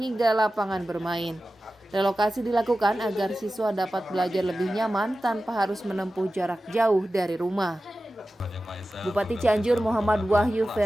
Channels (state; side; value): normal; both; correlation 0.94